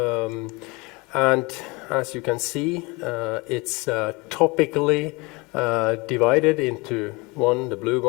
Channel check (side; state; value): right; quieter; 26.0 dB